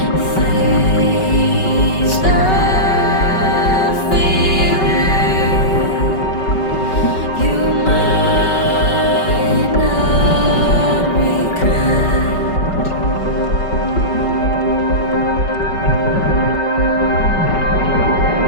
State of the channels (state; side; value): late; right; 5.3 ms